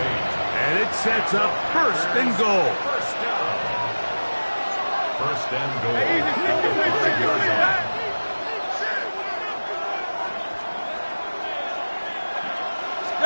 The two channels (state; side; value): inverted; both; correlation -1.00